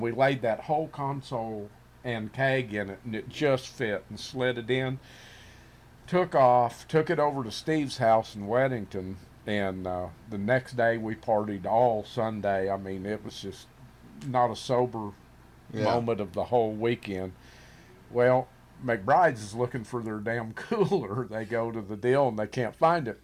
we laid that whole console and keg in it, and it just fit, and slid it in. Took off, took it over to Steve's house in Weddington. And the next day we partied all Sunday. I mean, it was just not a sober moment of the whole weekend. Well, McBride's is looking for their damn cooler. They go to the deal and they can't find it.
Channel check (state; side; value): identical; both; correlation 1.00